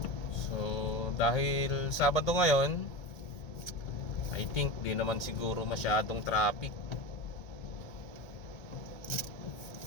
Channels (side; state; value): right; late; 1.8 ms